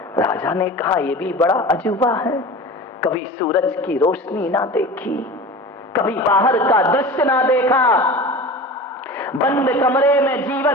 राजा ने कहा यह भी बड़ा अजूबा है, कभी सूरज की रोशनी ना देखी, कभी बाहर का दृश्य ना देखा, बंद कमरे में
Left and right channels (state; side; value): normal; both; correlation 0.34